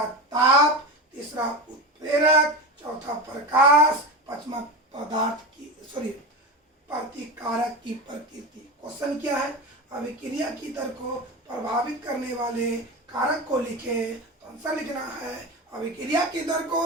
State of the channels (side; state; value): both; normal; correlation 0.23